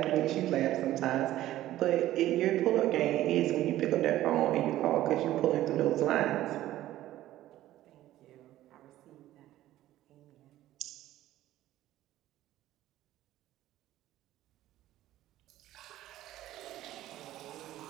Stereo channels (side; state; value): left; quieter; 14.4 dB